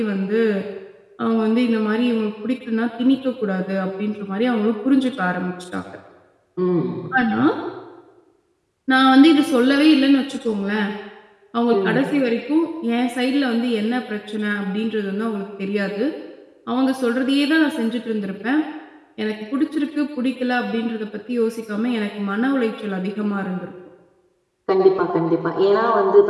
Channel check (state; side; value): identical; both; correlation 1.00